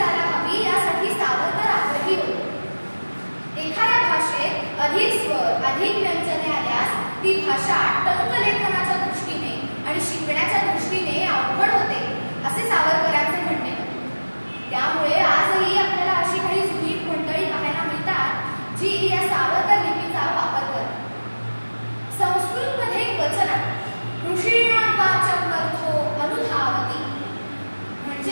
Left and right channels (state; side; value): inverted; both; correlation -1.00